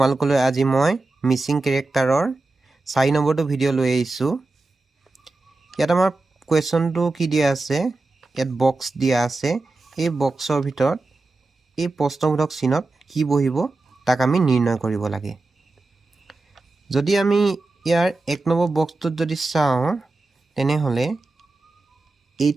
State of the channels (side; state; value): left; quieter; 3.3 dB